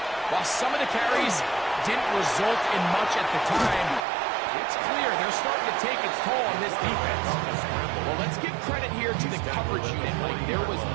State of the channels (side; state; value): left; drops out; at 4.0 s